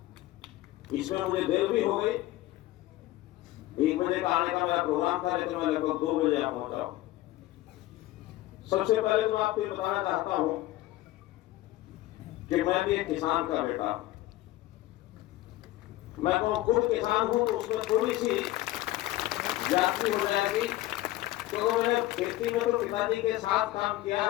इसमें मुझे देर भी हो गई। 1 बजे का आने का मेरा प्रोग्राम था, लेकिन मैं लगभग 2 बजे यहाँ पहुंचा हूं। सबसे पहले तो आपको ये बताना चाहता हूं कि मैं भी एक किसान का बेटा हूं। मैं तो खुद किसान हूं, तो उसमें थोड़ी सी जाति हो जाएगी। तो मैंने खेती में तो पिताजी के साथ काम किया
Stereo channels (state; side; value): quieter; right; 16.5 dB